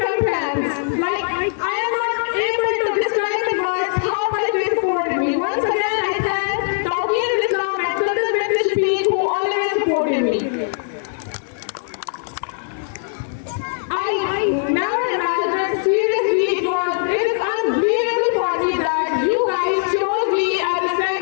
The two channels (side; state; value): right; silent; digital silence